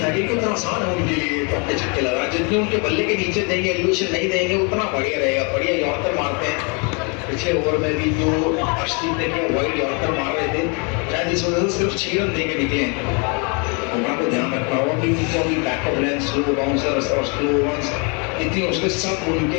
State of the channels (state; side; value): quieter; right; 33.9 dB